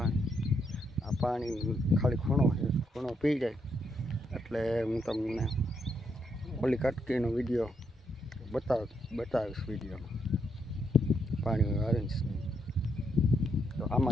આ પાણી ખાલી ખૂણો પી જાય એટલે હું તમને ઓલી કટકીનો વિડીયો બતાવીશ વિડીયોમાં પાણી ઓરેન્જ. તો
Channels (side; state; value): both; normal; correlation 0.78